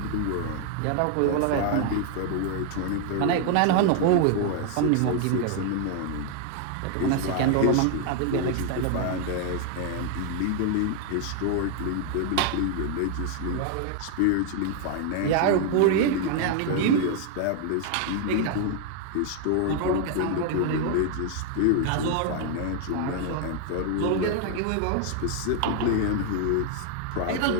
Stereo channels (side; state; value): both; different; correlation 0.00